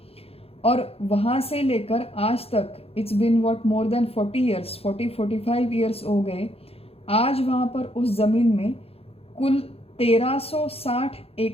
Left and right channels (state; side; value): late; right; 0.28 ms